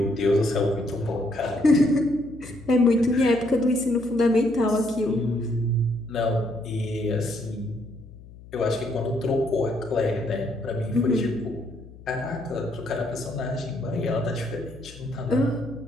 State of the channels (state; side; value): noise; left; hum, 19 dB below the sound